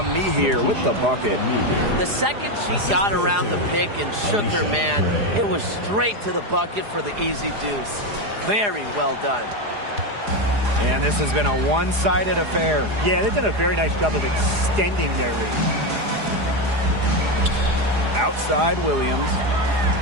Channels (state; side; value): late; left; 4.8 ms